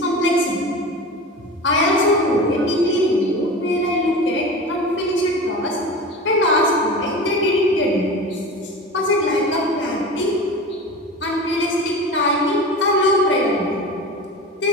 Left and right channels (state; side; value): normal; both; correlation 0.32